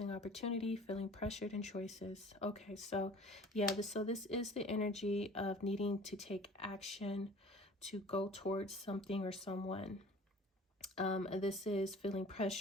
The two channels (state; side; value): normal; both; correlation 0.46